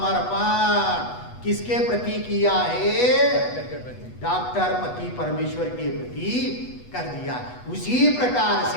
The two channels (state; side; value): late; right; 8.2 ms